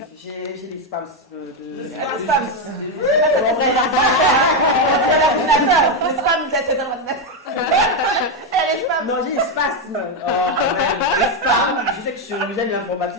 J'ai des spams de... spams. Non, j'ai des spasmes. Les spams. Je sais que j'aime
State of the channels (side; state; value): both; normal; correlation 0.06